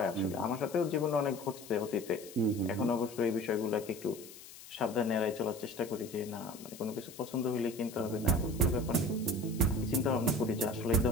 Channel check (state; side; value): noise; left; hiss, 17 dB below the sound